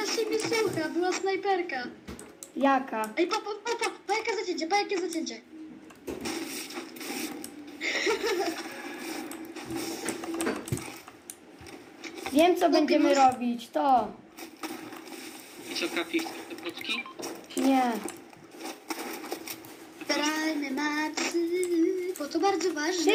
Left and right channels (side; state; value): both; identical; correlation 1.00